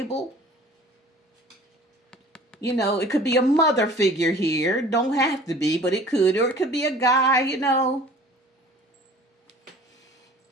You know, it could be a mother figure here. Don't have to be, but it could, or it could be a guy. You know,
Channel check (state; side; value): normal; both; correlation 0.47